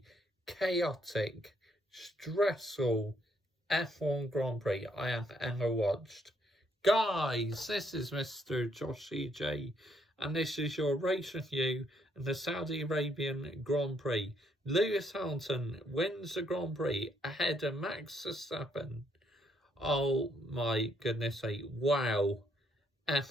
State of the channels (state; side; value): normal; both; correlation 0.71